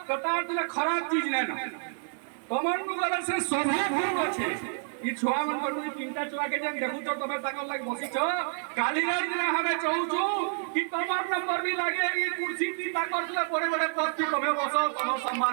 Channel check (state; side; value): silent; left; digital silence